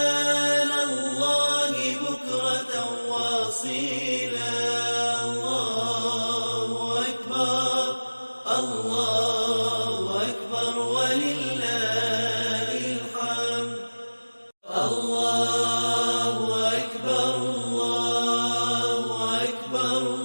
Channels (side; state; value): both; inverted; correlation -1.00